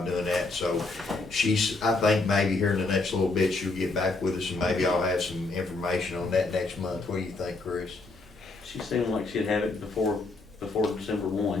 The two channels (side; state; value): right; quieter; 3.4 dB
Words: doing that. So I think maybe here in the next little bit, she'll get back with us and maybe I'll have some information on that next month. What do you think, Chris? She seemed like she'd have it before December